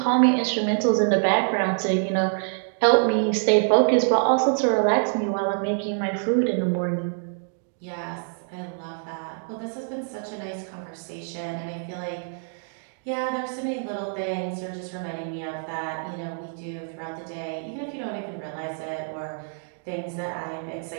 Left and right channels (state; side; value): silent; left; 61 dB below the other